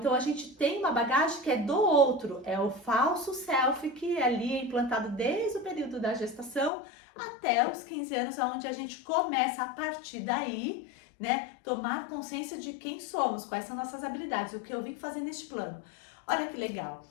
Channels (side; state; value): right; drops out; at 6.7 s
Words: a gente tem uma bagagem que é do outro, é o falso self que ali é implantado desde o período da gestação até os 15 anos, onde a gente começa a partir daí, né, tomar consciência de quem somos, quais são nossas habilidades, o que eu vim fazer neste plano. Olha que legal.